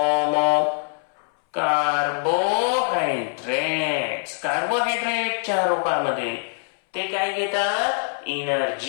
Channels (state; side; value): silent; right; 63 dB below the other